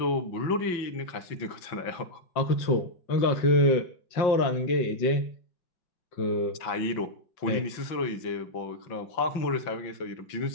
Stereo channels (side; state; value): right; late; 5.9 ms